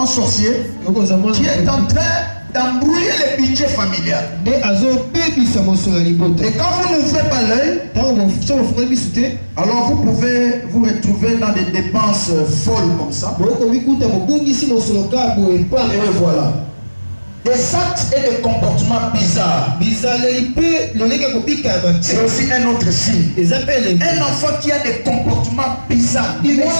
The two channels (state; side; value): inverted; both; correlation -1.00